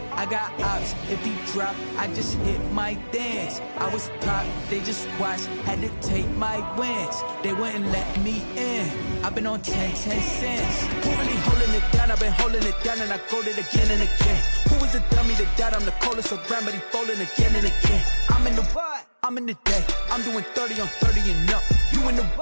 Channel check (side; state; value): both; inverted; correlation -1.00